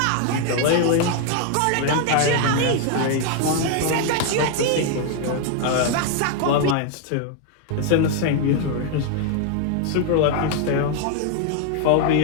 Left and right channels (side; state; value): both; different; correlation 0.00